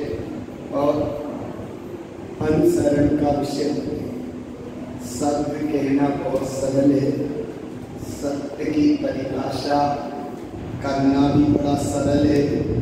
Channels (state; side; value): identical; both; correlation 1.00